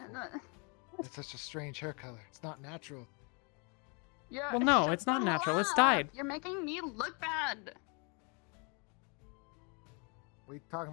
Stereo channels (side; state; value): right; quieter; 34.0 dB